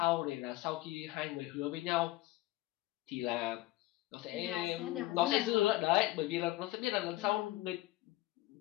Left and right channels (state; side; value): quieter; right; 17.9 dB